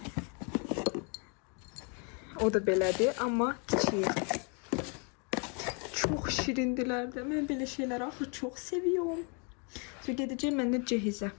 O da belədir, amma kiçiyi. Çox şirindilər də. Mən belə şeyləri axı çox seviyorum. Sonra gedəcəyim mən də cehizə.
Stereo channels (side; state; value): right; quieter; 36.9 dB